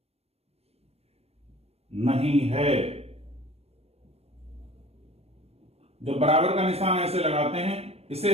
नहीं है। जब बराबर का निशान ऐसे लगाते हैं, इसे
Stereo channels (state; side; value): late; left; 0.30 ms